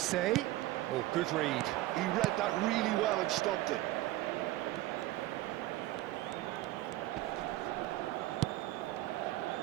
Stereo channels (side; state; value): left; quieter; 16.6 dB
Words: Oh, good read. He read that really well and stopped it.